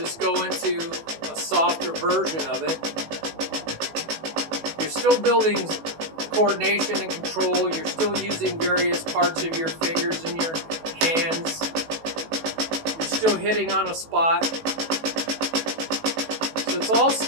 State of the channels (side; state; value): left; late; 18 ms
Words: go into a softer version of it. You're still building coordination and control. You're still using various parts of your fingers and your hands. You're still hitting on a spot. So it's all